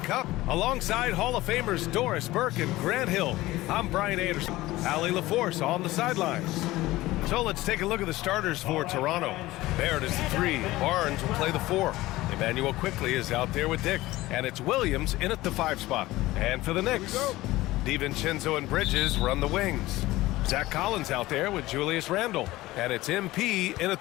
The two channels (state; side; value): quieter; right; 17.9 dB